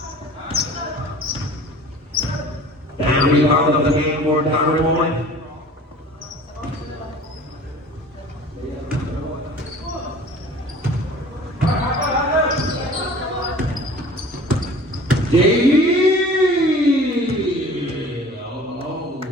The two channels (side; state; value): both; normal; correlation 0.45